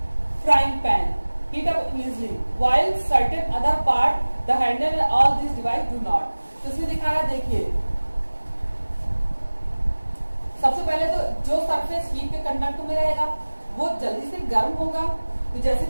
frying pan heat up easily while certain other part the handle and all these device do not। तो इसमें दिखा रहा है, देखिए सबसे पहले तो जो सरफेस हीट के कंडक्ट में रहेगा वो जल्दी से गर्म होगा। तो जैसे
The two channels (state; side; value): inverted; both; correlation -1.00